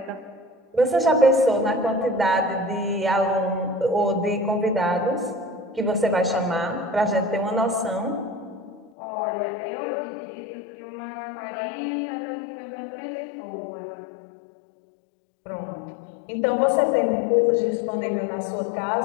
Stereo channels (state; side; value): drops out; right; at 8.9 s